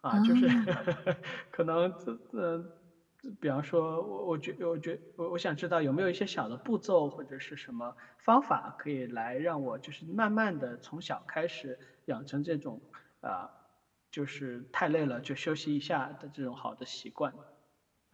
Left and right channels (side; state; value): both; identical; correlation 1.00